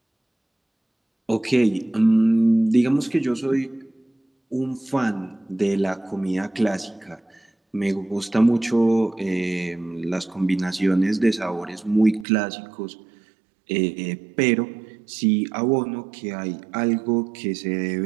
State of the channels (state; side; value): drops out; left; at 12.2 s